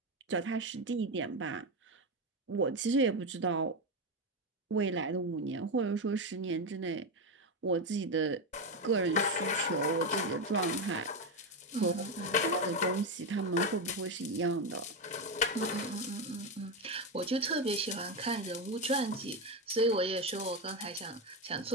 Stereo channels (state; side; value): normal; both; correlation 0.11